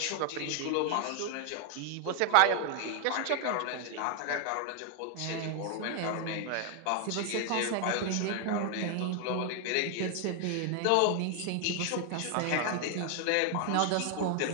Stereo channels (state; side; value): different; both; correlation 0.00